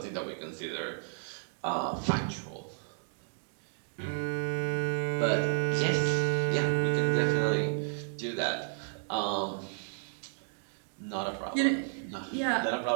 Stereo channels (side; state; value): left; silent; digital silence